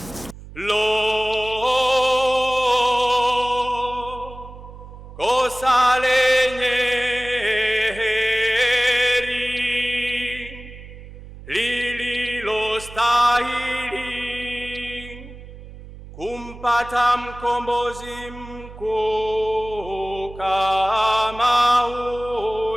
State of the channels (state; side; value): noise; right; hum, 16 dB below the sound